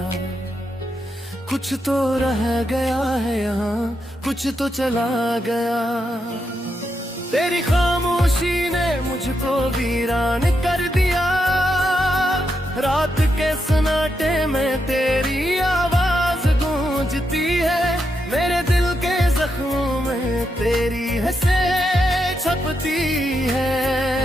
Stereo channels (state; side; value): normal; both; correlation 0.83